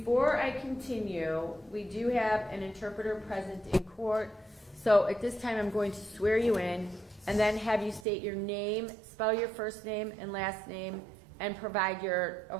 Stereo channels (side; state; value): left; drops out; at 8.1 s